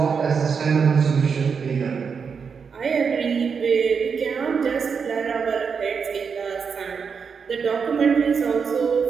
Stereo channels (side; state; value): left; quieter; 6.0 dB